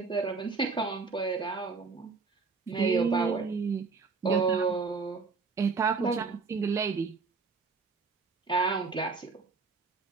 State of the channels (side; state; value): left; quieter; 4.6 dB